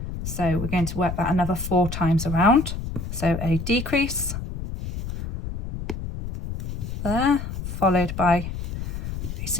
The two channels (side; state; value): left; noise; rumble, 6 dB below the sound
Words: So we're going to work that another 4 times around. So a decrease there, followed by a